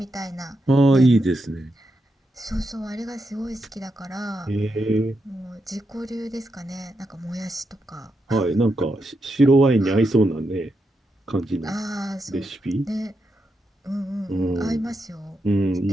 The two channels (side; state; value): both; normal; correlation 0.84